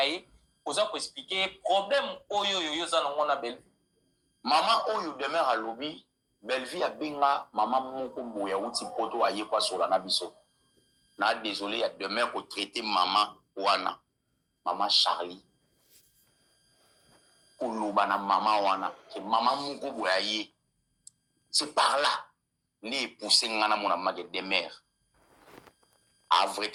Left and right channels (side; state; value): both; identical; correlation 1.00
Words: pour expliquer problème oyo on a Belleville. Maman oyo demeure à lobby, Belleville a binga, maman moko moya outi poto aye kwa sur la nabiso. Na désolé, il y a demeure pour traiter maman wana, maman Charlie. Pour l'obana maman wana, que maman moko moya ye. C'est par là, les poussés ngana mon amage des mères. À vrai